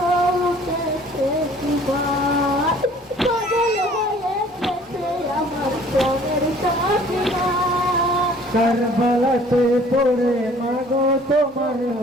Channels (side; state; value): both; normal; correlation 0.53